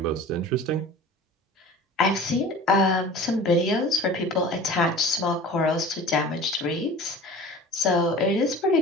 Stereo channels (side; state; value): both; normal; correlation 0.40